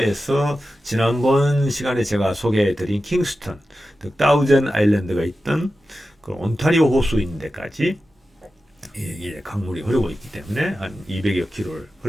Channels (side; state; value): both; normal; correlation 0.93